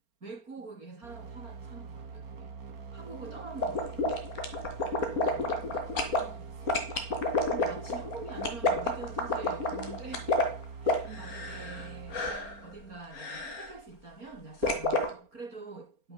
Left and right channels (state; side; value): late; left; 4.3 ms